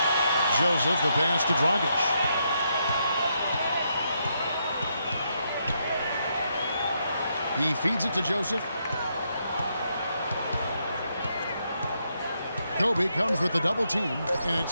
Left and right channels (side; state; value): both; inverted; correlation -0.78